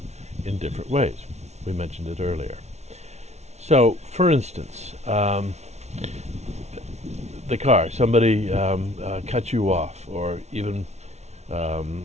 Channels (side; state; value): left; late; 0.32 ms